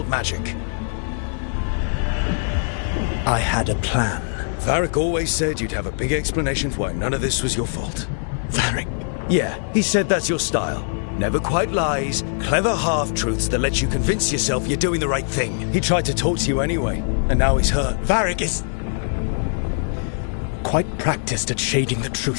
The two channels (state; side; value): silent; right; digital silence